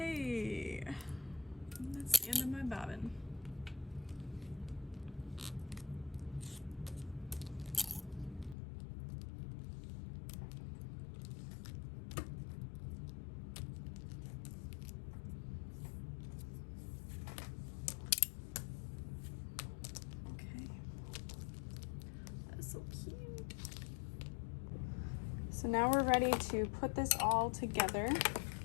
that's the end of my bobbin. So cute. So now we're ready to put this all together.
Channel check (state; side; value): drops out; right; at 8.6 s